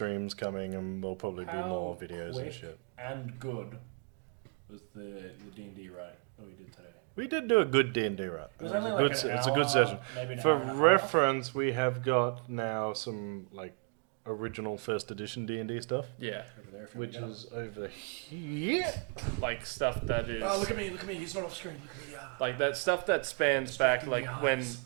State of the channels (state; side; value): quieter; left; 38.4 dB